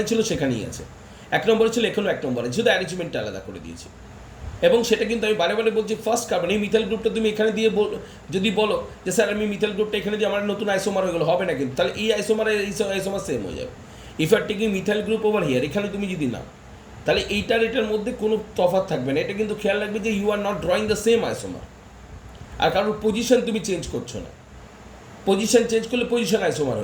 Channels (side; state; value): both; identical; correlation 1.00